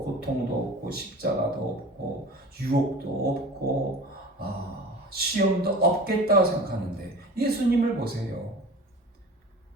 고통도 없고 십자가도 없고 유혹도 없고 시험도 없겠다고 생각하는데 예수님을 보세요.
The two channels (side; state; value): both; normal; correlation 0.38